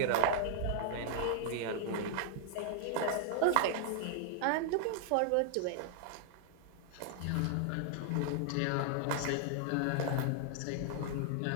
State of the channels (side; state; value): both; different; correlation 0.00